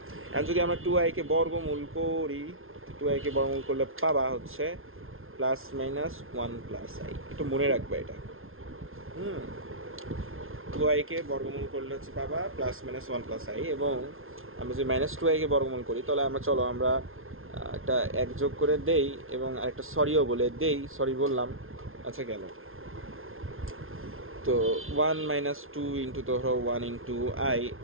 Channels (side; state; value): left; late; 0.61 ms